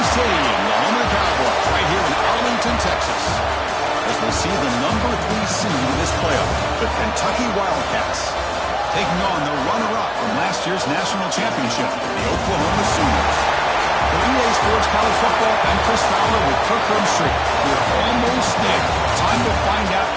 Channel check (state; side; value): identical; both; correlation 1.00